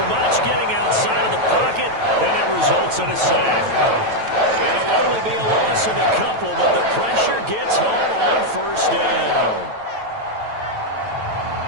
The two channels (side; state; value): left; late; 9.1 ms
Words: much, getting outside of the pocket, and it results in a sack. It'll only be a loss of a couple, but the pressure gets home on 1st down.